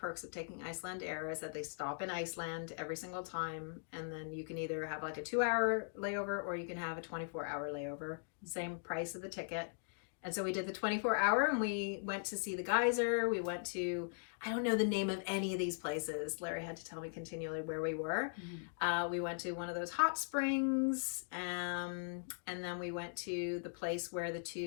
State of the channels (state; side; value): silent; right; digital silence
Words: of taking Iceland Air is that they stop in Iceland every single time, and then you can either have like a 2-hour layover or you can have a 24-hour layover. Same price of the ticket. And so we did the 24-hour, and we went to see the geyser. We went to, I don't know the name of any of these places. Larry had to tell me continually where we were. We went to one of those hot springs, and then we went to the place where the